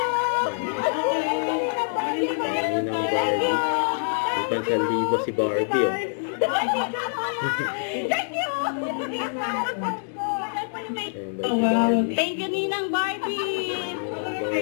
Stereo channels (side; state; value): right; silent; digital silence